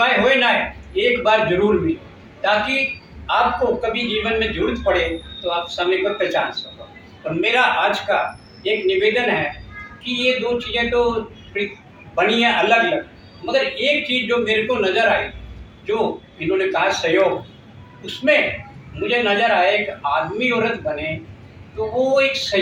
हो ना है, एक बार जरूर मिले ताकि आपको कभी जीवन में जरूरत पड़े तो आप समय को पहचान सको। और मेरा आज का एक निवेदन है कि ये दो चीज़ें तो बनी है अलग अलग, मगर एक चीज़ जो मेरे को नज़र आई, जो इन्होंने कहा सहयोग, उसमें मुझे नज़र आया एक आदमी औरत बने तो वो एक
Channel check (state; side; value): identical; both; correlation 1.00